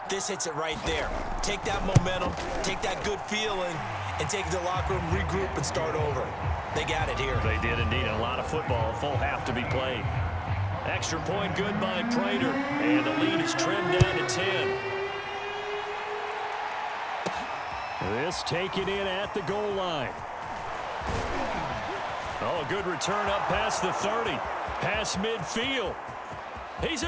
This hits it right there. Take that momentum, take that good feeling, and take it to the locker room, regroup, and start over. They got it here. They did indeed. A lot of football, full half to be played. Extra point good by Prater, and the lead is trimmed down to 10. This taken in at the goal line. Oh, a good return up past the 30. Past midfield. He's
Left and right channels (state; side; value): identical; both; correlation 1.00